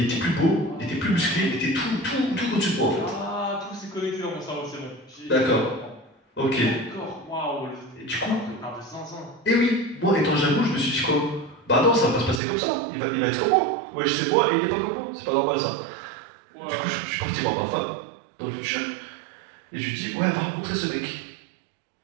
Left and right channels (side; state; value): left; drops out; at 12.4 s